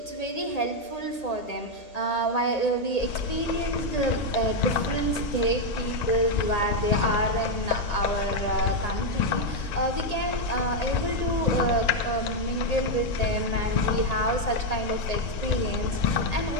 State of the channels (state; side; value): late; right; 1.8 ms